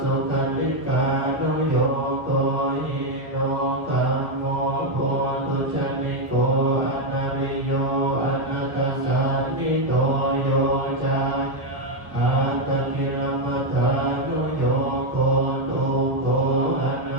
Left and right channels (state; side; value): late; left; 1.2 ms